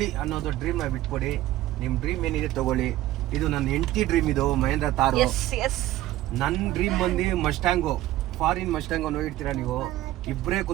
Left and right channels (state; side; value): quieter; left; 15.1 dB